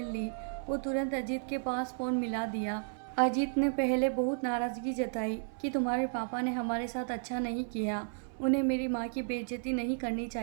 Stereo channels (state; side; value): silent; left; 56 dB below the other